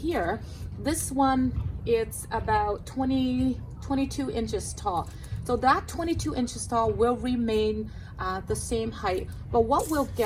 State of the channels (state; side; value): identical; both; correlation 1.00